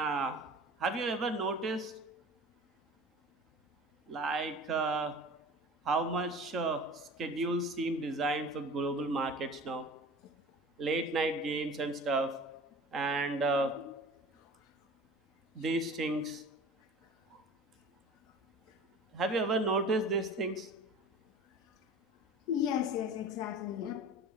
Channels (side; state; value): both; normal; correlation 0.40